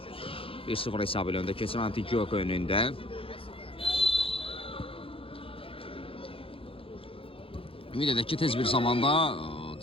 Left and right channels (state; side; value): late; right; 0.27 ms